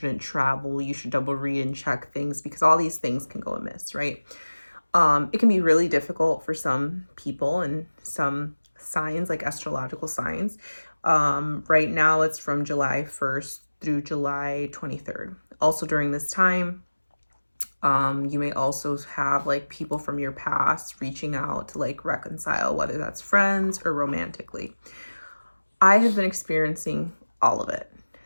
travel. You should double read and check things because all these things can go amiss, right? It can be really difficult for some people and some signs, like astrological signs. Right now, it's from July 1st through July 23rd. Also, during this time, you may also have like people from your past reaching out to like reconcile, whether that's friends or romantically. I have been experiencing all of it.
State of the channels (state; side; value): inverted; both; correlation -1.00